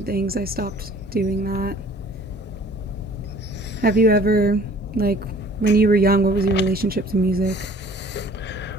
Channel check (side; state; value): both; normal; correlation 0.52